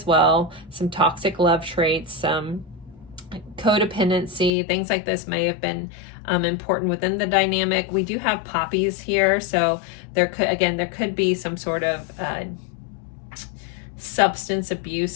well, some toxic love traits, some codependency, things like this may have been important within the dynamic. We do have poppies here, so there could be some sort of substance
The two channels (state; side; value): drops out; right; at 4.5 s